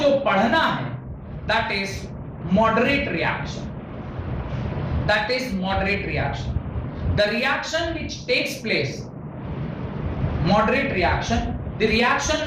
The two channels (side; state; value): both; identical; correlation 1.00